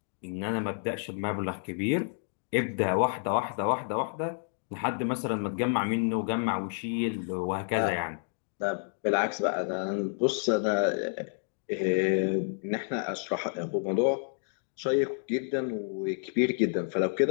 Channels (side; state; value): right; silent; digital silence